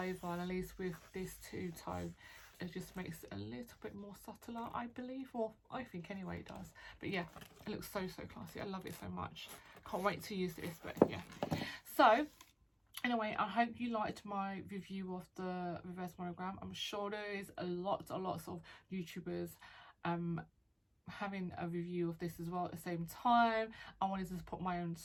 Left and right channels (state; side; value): identical; both; correlation 1.00